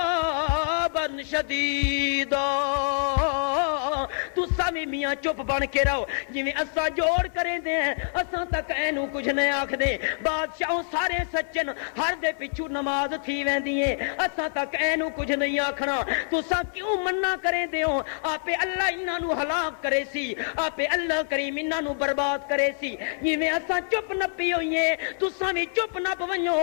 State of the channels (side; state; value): right; silent; digital silence